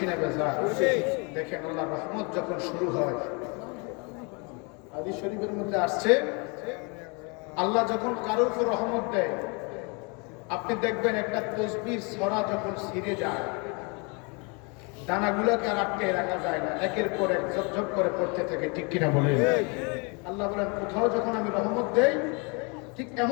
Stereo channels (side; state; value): right; quieter; 32.0 dB